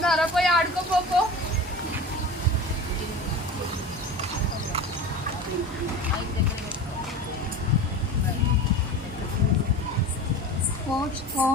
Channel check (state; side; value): normal; both; correlation 0.33